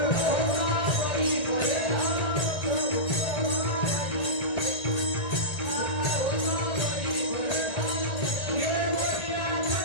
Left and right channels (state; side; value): late; right; 1.8 ms